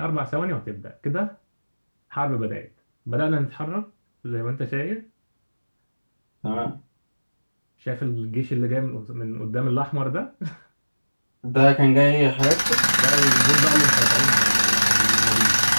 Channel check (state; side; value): inverted; both; correlation -1.00